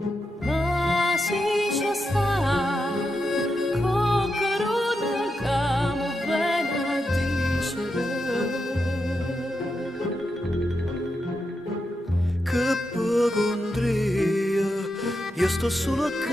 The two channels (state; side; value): normal; both; correlation 0.86